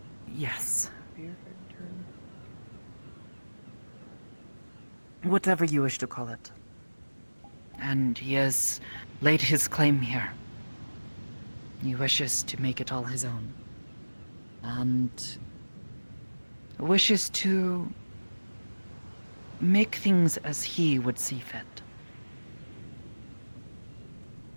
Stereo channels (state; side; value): inverted; both; correlation -1.00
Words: Yes. Whatever you wish to call it. And he has laid his claim here. He wishes to make it all his own. And wishes to make things as he would see fit.